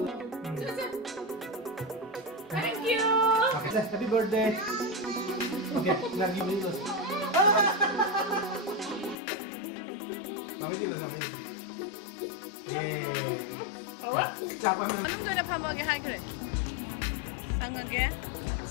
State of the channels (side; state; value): right; drops out; at 9.2 s